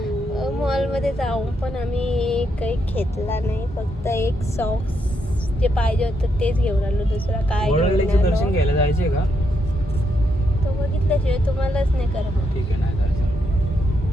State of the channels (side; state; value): both; normal; correlation 0.79